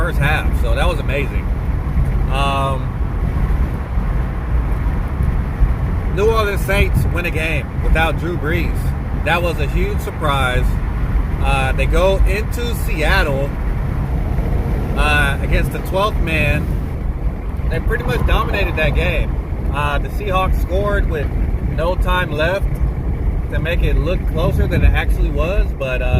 half, so that was amazing. New Orleans Saints win a game without Drew Brees. That was a huge surprise. They go into Seattle against the 12th man. They pretty much dominated that game. The Seahawks scored with no time left to make it look closer than it actually was, but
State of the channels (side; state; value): both; identical; correlation 1.00